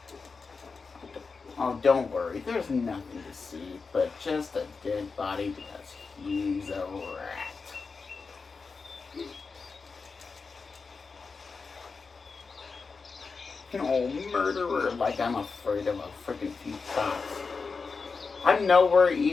Oh, don't worry. There's nothing to see, but just a dead body because he's a rat. Oh, murderer, like I'm afraid of a freaking few cops. I'm nowhere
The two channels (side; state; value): right; quieter; 4.7 dB